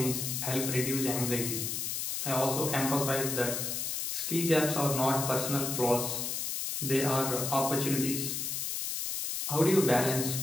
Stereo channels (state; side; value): noise; left; hiss, 2 dB below the sound